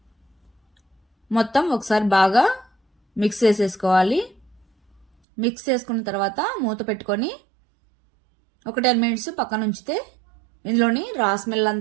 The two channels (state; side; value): drops out; left; at 5.1 s